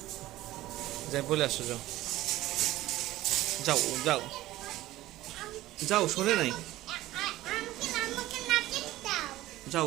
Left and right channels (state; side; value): quieter; left; 16.2 dB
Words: যাই বলে আসো, যাও যাও যাও যাও, শোনে নাই,